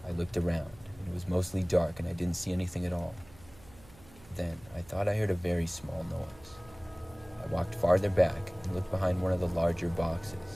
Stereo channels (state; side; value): noise; right; hum, 23 dB below the sound